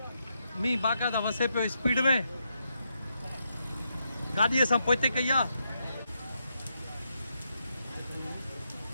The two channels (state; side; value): inverted; both; correlation -0.82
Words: मींहुं बाक़ाइदा वसे पियो स्पीड में गाॾी असां पोइते कई आहे